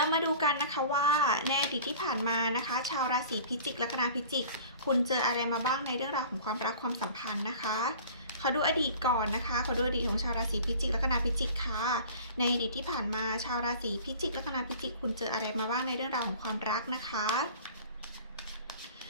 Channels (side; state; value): both; inverted; correlation -0.43